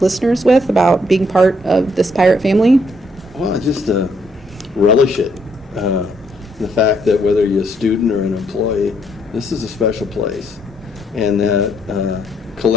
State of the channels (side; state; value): both; normal; correlation 0.70